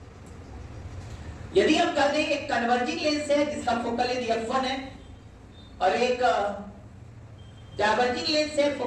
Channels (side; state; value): both; identical; correlation 1.00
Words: यदि हम कहते हैं एक कन्वर्जिंग लेंस है जिसका फोकल लेंथ F1 है और एक डाइवर्जिंग लेंस है